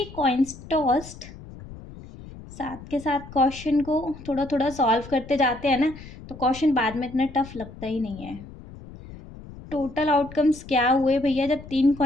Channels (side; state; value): left; noise; rumble, 16 dB below the sound